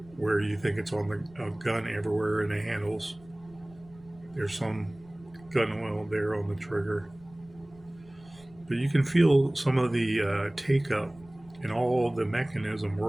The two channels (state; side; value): noise; right; rumble, 25 dB below the sound